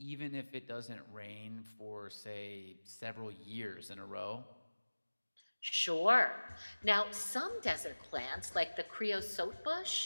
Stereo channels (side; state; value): both; inverted; correlation -1.00